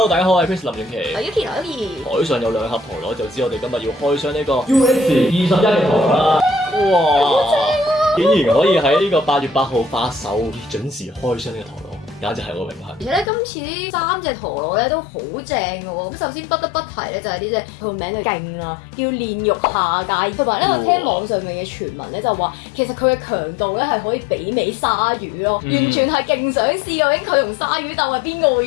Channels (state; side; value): drops out; right; at 13.3 s